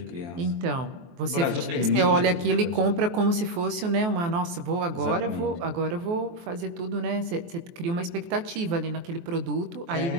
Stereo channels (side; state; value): left; late; 23 ms